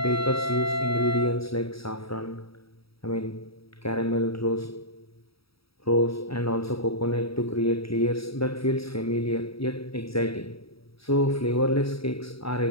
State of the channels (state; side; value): late; right; 0.76 ms